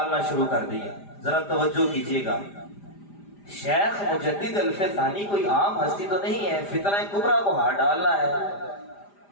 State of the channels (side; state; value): right; late; 5.0 ms